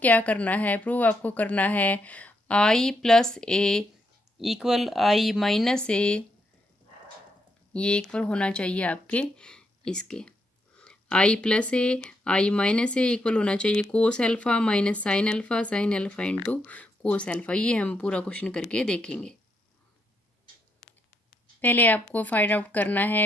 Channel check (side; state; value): both; normal; correlation 0.78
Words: क्या करना है, प्रूव आपको करना है I plus A equal I minus A, ये इक्वल होना चाहिए आपके इसके, I plus A I minus A equal होना चाहिए cos alpha minus sine alpha into cos alpha. ये हम पूरा क्वेश्चन करके देखेंगे। पहले आपको फाइंड आउट करना